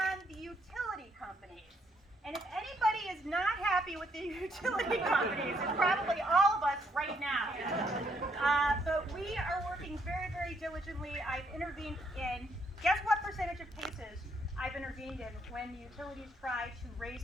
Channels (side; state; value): both; normal; correlation 0.72